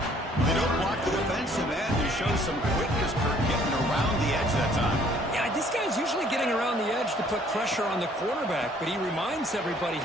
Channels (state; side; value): normal; both; correlation 0.60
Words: They don't block the defensive end. They show some quickness, Kirk, getting around the edge that time. Yeah, this guy's usually getting around the edge to put pressure on the quarterback, but he reminds everybody